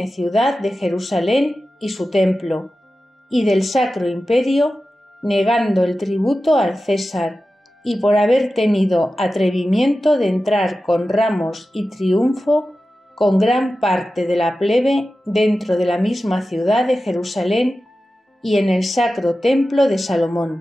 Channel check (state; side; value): normal; both; correlation 0.94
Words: ciudad de Jerusalén y su templo, y del Sacro Imperio, negando el tributo al César, y por haber tenido atrevimiento de entrar con ramos y triunfo con gran parte de la plebe dentro de la misma ciudad de Jerusalén y en el sacro templo de